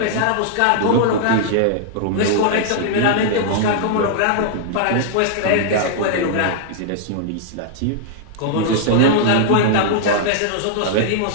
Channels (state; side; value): different; both; correlation -0.01